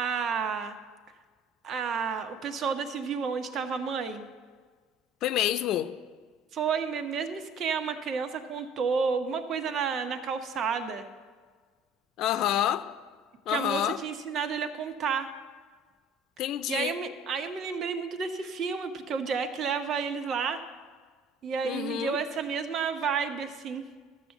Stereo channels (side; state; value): both; normal; correlation 0.49